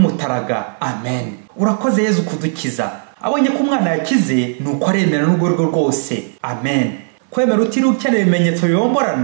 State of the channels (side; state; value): left; silent; digital silence